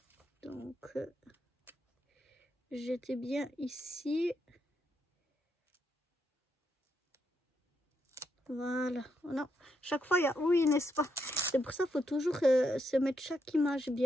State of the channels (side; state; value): both; normal; correlation 0.79